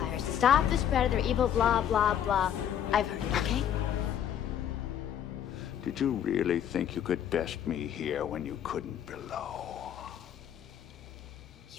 to stop the spread of their evil blah, blah, blah. I've heard it, okay? Did you really think you could best me here when you couldn't below?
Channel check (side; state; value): right; quieter; 9.7 dB